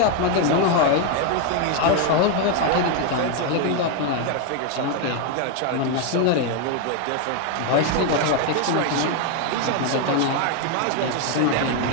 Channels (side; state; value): both; different; correlation 0.01